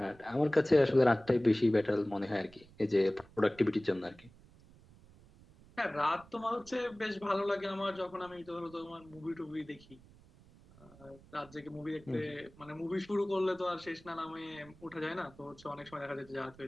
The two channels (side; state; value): right; noise; rumble, 24 dB below the sound